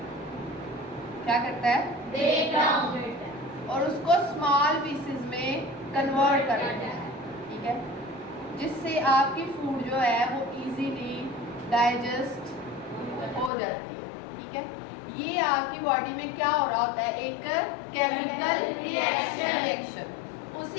क्या करता है? ब्रेक डाउन करता है और उसको स्मॉल पीसेस में कन्वर्ट कर देता है। ठीक है, जिससे आपकी फूड जो है वो इजीली डाइजेस्ट हो जाती है। ठीक है, ये आपकी बॉडी में क्या हो रहा होता है? एक केमिकल रिएक्शन।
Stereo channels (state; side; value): drops out; right; at 13.5 s